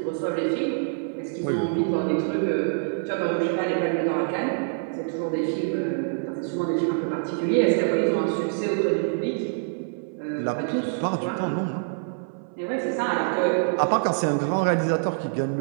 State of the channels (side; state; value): left; silent; 61 dB below the other